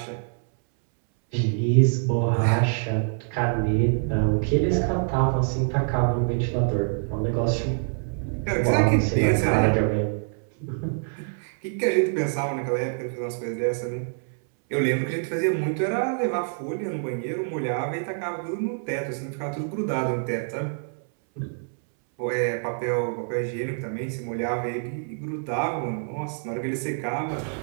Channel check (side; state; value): left; silent; 61 dB below the other